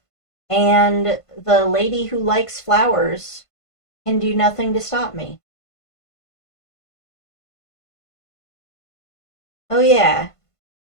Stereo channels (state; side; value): late; right; 1.5 ms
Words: and the lady who likes flowers can do nothing to stop me. Oh yeah,